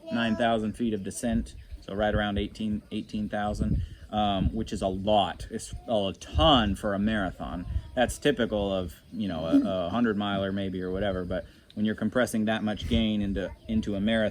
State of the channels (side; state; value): both; identical; correlation 1.00